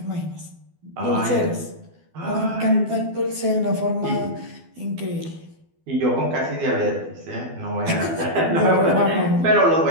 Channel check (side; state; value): left; late; 12 ms